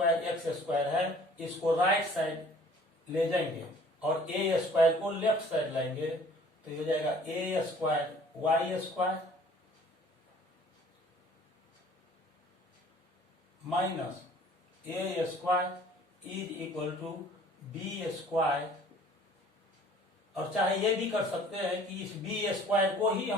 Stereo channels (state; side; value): normal; both; correlation 0.53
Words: एक्स स्क्वायर है, इसको राइट साइड ले जाएंगे और ए स्क्वायर को लेफ्ट साइड लाएंगे, तो ये हो जाएगा a square Y square minus a square is equal to b square. और चाहे ये भी कर सकते हैं कि इस बी स्क्वायर को ही